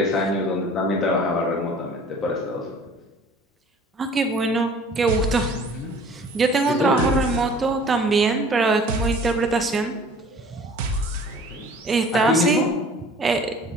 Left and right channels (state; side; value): normal; both; correlation 0.48